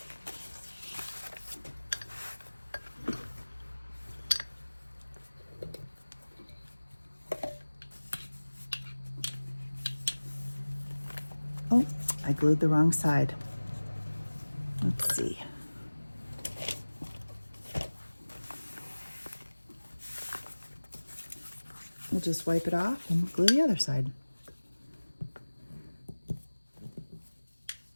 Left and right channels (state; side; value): inverted; both; correlation -1.00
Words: Oh, I glued the wrong side. Let's see. We'll just wipe it off and glue the other side.